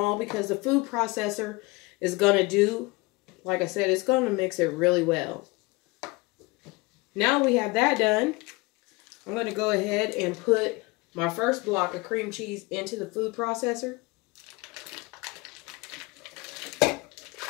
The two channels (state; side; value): quieter; right; 24.3 dB